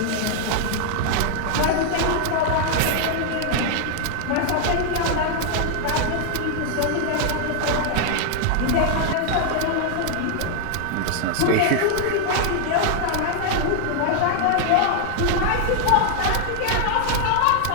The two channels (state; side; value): different; both; correlation 0.00